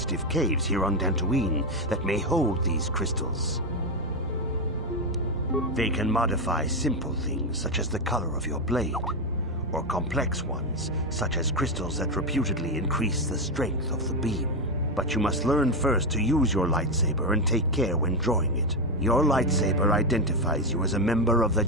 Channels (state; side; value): normal; both; correlation 0.08